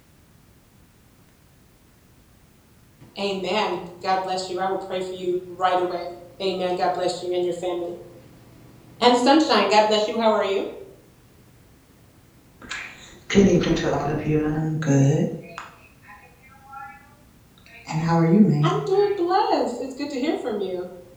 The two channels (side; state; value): both; identical; correlation 1.00